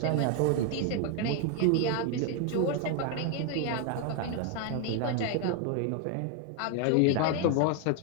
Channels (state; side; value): different; both; correlation 0.01